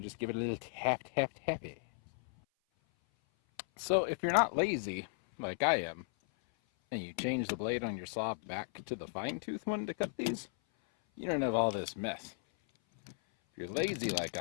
just give it a little tap, tap, tappy. So if you're not lazy, like I am, and you change the blade on your saw back to the fine tooth one to cut these, you don't have all this mess. If you're lazy like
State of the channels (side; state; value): right; silent; 54 dB below the other